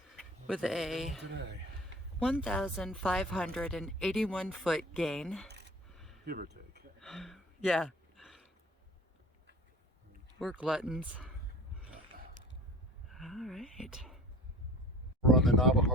with a today, 1,581 foot gain. give or take. Yeah. We're gluttons. All right. We're on the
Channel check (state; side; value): normal; both; correlation 0.42